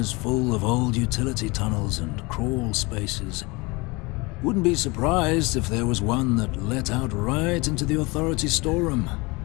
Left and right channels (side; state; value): right; quieter; 25.4 dB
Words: full of old utility tunnels and crawl spaces. Wouldn't be surprised if there was one that let out right into the authority storeroom.